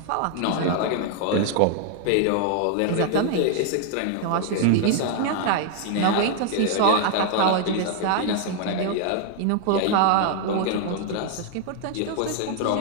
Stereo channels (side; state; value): both; different; correlation 0.00